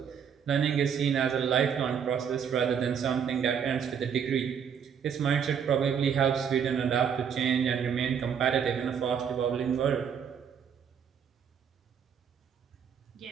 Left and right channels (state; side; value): quieter; left; 7.6 dB